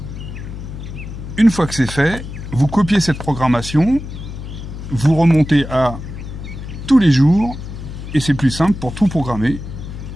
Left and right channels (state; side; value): noise; left; hum, 10 dB below the sound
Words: Une fois que c'est fait, vous copiez cette programmation, vous remontez à tous les jours, et c'est plus simple pour tout programmer